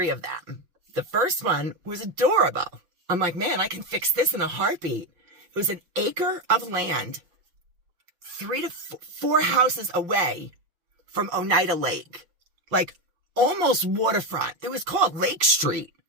of them. The first one was adorable. I'm like, man, I can fix this in a heartbeat. It was an acre of land, 3 to 4 houses away from Oneida Lake, like almost waterfront. It was called Lake Street.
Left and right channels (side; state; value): left; late; 5.6 ms